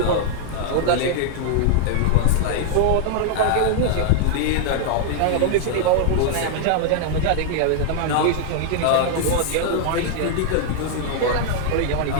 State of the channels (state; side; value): different; both; correlation -0.01